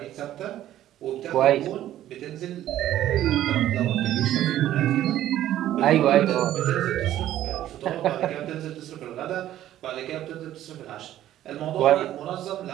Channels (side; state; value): left; quieter; 12.8 dB